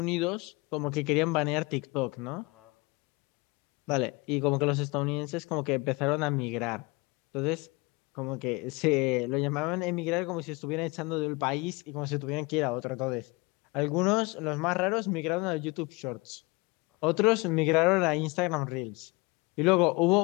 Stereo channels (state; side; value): quieter; right; 25.7 dB